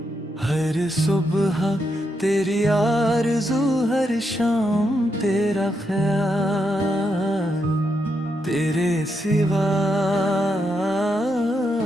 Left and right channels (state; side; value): normal; both; correlation 0.81